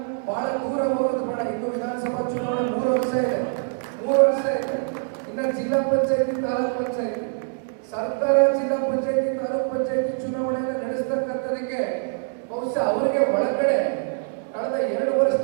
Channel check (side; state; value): left; silent; 62 dB below the other